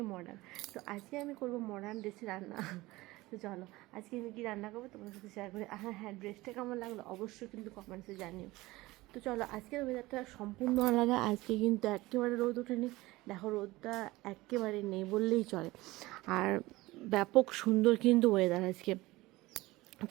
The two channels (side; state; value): left; quieter; 19.7 dB